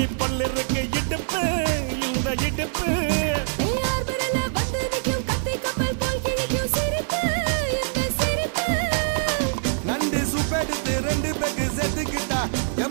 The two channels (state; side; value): silent; left; digital silence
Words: பொல்லு இருக்கு இடுப்பு இந்த இடுப்பு ரெண்டு சுப்பெடுத்து ரெண்டு பேருக்கு சேர்த்துக்கிட்டா